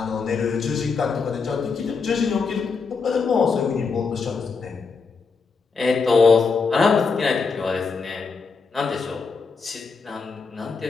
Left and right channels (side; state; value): right; quieter; 4.9 dB